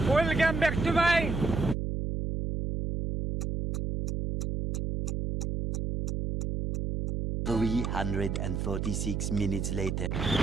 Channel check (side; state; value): right; noise; hum, 2 dB below the sound